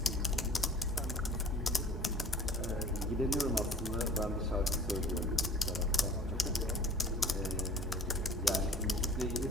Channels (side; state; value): both; normal; correlation 0.46